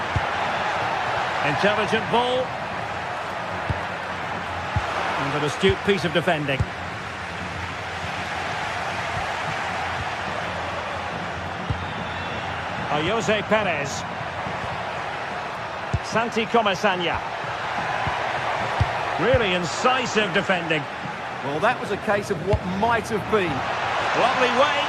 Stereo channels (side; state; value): both; identical; correlation 1.00